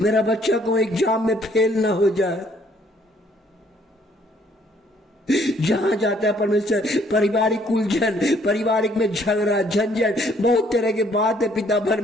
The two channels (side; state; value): both; normal; correlation 0.64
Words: बच्चा को एग्जाम में फेल ना हो जाए। जहां जाता है परमेश्वर पारिवारिक उलझन, पारिवारिक में झगड़ा झंझट, बहुत तरह के बात है पिता